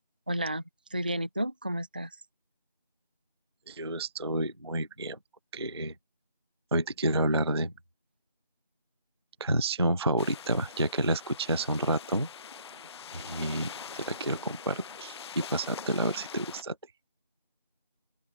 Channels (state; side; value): inverted; both; correlation -0.64